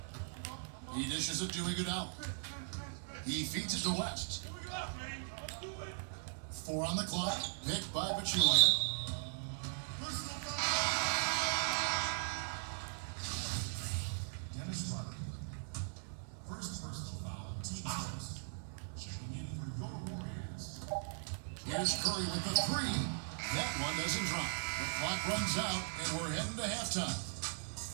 He dishes it to Iguodala. He feeds it to West. 4 on the clock. Picked by Pachulia. Dennis Rodman. First personal foul. Team first. Checking in for your Warriors. Here's Curry with the 3. That one doesn't drop. The clock runs out, and we're heading to halftime.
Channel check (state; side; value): silent; left; digital silence